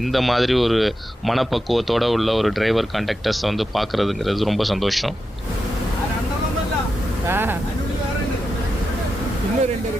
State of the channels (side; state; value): both; normal; correlation 0.89